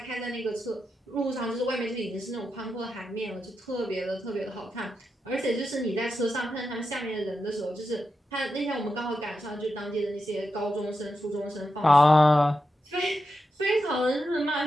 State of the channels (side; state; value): both; normal; correlation 0.88